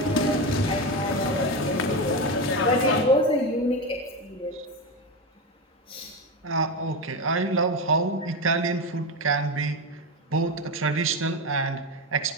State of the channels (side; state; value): both; normal; correlation 0.16